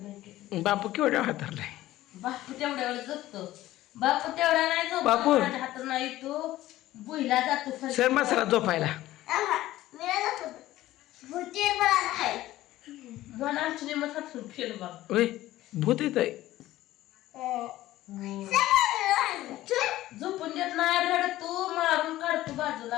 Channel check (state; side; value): quieter; right; 15.5 dB